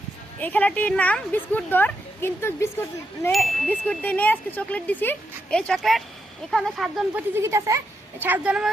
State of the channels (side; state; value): both; normal; correlation 0.82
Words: এই খেলাটির নাম বিস্কুট দৌড়, কিন্তু বিস্কুট দিয়ে নিয়ে আজকে চকলেট দিছি। এই চকলেট এখানে 7 জন প্রতিযোগিতা আছে। 7 জনের